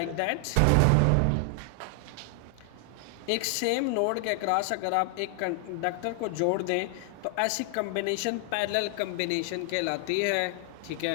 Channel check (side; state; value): both; different; correlation 0.00